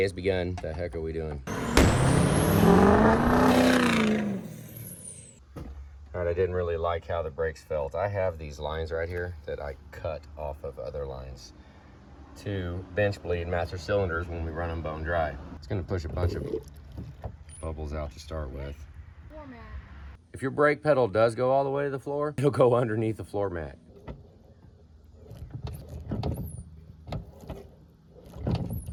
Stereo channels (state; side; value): identical; both; correlation 1.00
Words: has begun. The heck are we doing? All right, I didn't really like how the brakes felt. I have these lines right here that I cut off of other lines to bench bleed master cylinders when we run them bone dry. It's gonna push a bunch of bubbles out to start with. If your brake pedal does go all the way to the floor, it'll go underneath the floor mat.